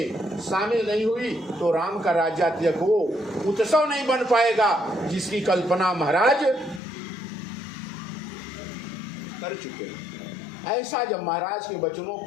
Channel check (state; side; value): drops out; right; at 6.8 s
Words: शामिल नहीं हुई, तो राम का राज्य तिलक वो उत्सव नहीं बन पाएगा जिसकी कल्पना महाराज कर चुके हैं। ऐसा जब महाराज के वचनों